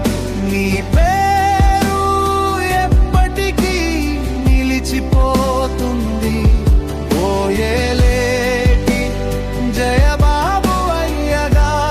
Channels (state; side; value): identical; both; correlation 1.00